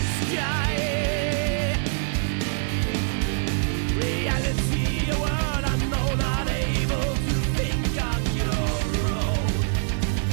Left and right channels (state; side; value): silent; left; 62 dB below the other